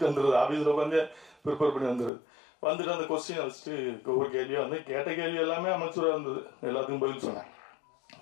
வந்துடுது. ஆஃபீஸில் உட்காந்து ப்ரிப்பேர் பண்ணி வந்துடுது. வந்துட்டு அந்த கொஸ்டினை வச்சுட்டு ஒவ்வொரு கேள்வியாக வந்து கேட்ட கேள்வி எல்லாமே அமைச்சராக இருந்தது. எல்லாத்துக்கும் பதில் சொன்னேன்.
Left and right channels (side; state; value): right; drops out; at 2.1 s